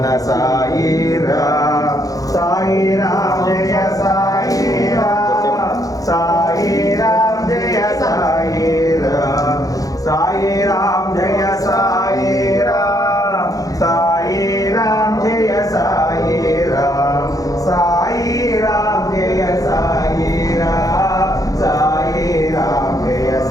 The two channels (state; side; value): late; right; 0.17 ms